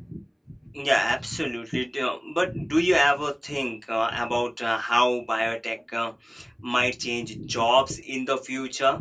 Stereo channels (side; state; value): both; identical; correlation 1.00